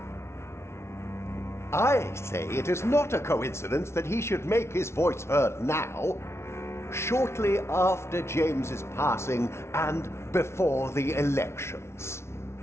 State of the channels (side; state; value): right; late; 0.13 ms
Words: I say it is not a coincidence that he should make his voice heard now, shortly after James's passing and before the elections.